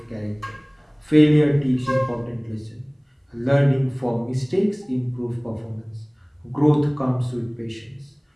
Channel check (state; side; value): identical; both; correlation 1.00